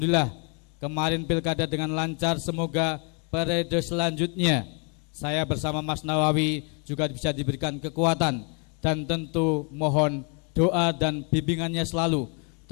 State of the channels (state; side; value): quieter; right; 36.4 dB